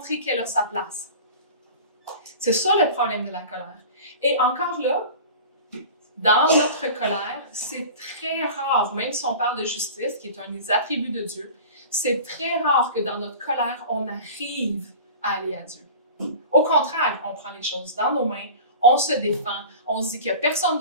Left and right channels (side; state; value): both; inverted; correlation -0.38